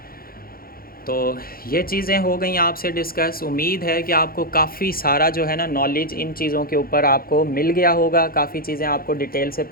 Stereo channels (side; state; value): right; late; 0.43 ms